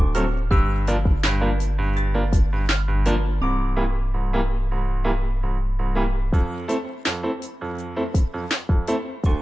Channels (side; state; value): both; normal; correlation 0.96